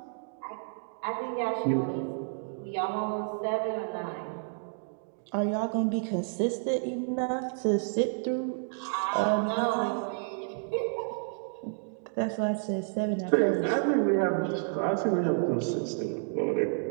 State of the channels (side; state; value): left; silent; digital silence